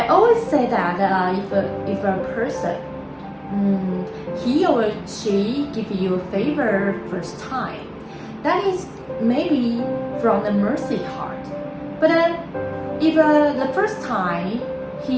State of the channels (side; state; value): both; identical; correlation 1.00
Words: always say that if a person he or she give you a favor first time, that is maybe from the mercy heart. But if the first time